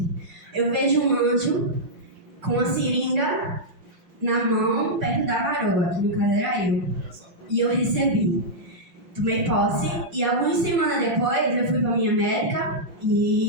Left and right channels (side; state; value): left; late; 5.8 ms